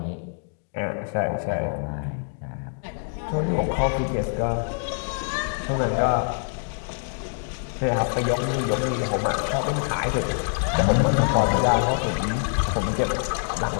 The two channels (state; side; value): silent; right; 61 dB below the other